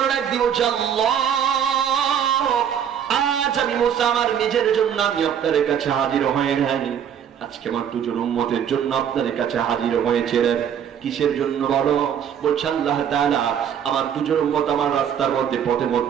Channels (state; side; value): quieter; left; 8.7 dB